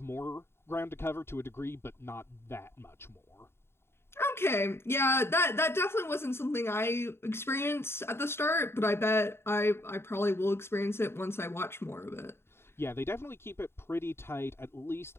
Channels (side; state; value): right; late; 0.12 ms